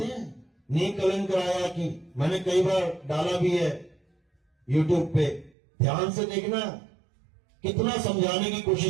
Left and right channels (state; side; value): drops out; left; at 5.5 s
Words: हैं नी कलंक राया की। मैंने कई बार डाला भी है यूट्यूब पे, ध्यान से देखना कितना समझाने की